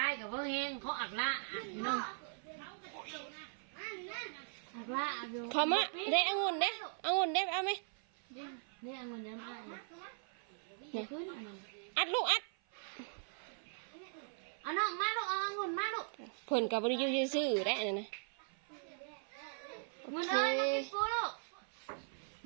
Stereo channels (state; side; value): silent; left; 51 dB below the other